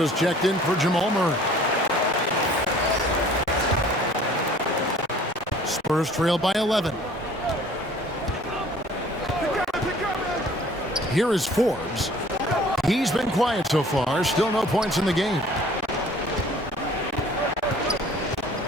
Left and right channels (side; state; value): both; normal; correlation 0.52